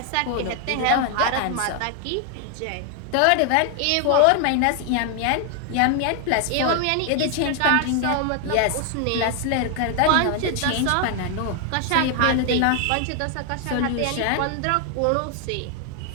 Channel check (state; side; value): different; both; correlation 0.00